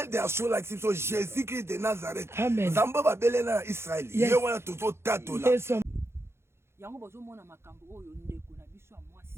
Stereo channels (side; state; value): left; late; 0.12 ms